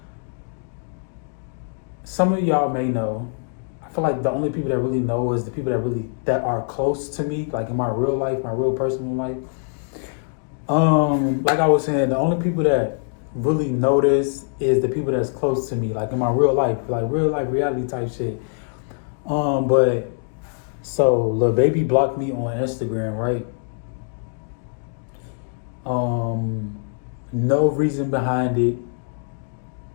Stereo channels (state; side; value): silent; right; digital silence